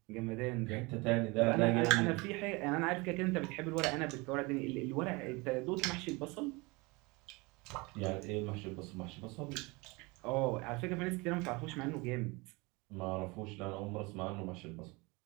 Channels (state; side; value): quieter; left; 25.8 dB